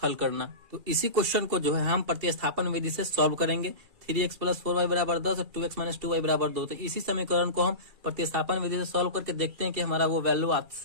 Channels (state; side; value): late; left; 2.4 ms